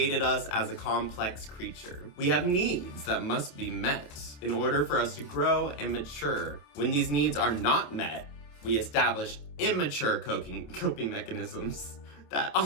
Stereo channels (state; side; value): late; right; 27 ms